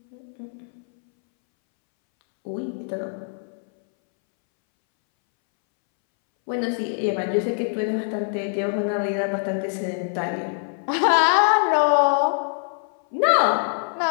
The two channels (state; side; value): silent; right; 63 dB below the other